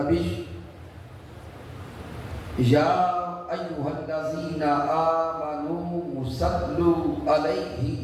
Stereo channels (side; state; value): both; identical; correlation 1.00